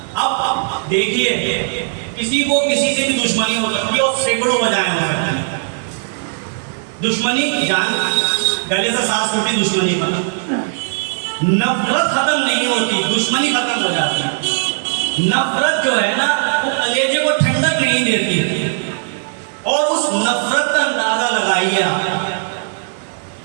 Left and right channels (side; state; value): left; silent; digital silence